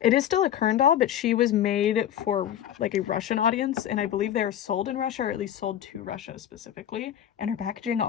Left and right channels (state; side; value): quieter; right; 10.6 dB